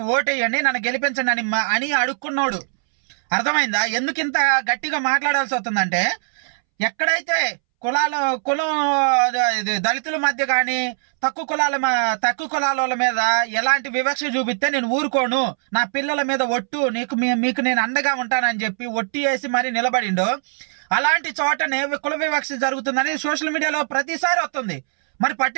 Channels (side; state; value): left; silent; 65 dB below the other